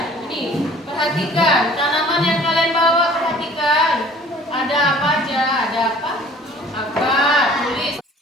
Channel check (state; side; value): normal; both; correlation 0.50